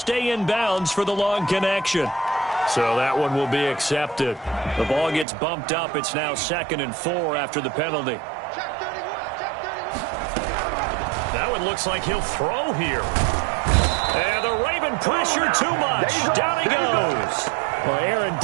in bounds for the long connection. So that one will be accepted. The ball gets bumped up. It's now 2nd and 4 after the penalty. That one looks like he'll throw here. And the Raven pressure too much. Down he goes. Well, Aaron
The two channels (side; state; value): left; drops out; at 5.2 s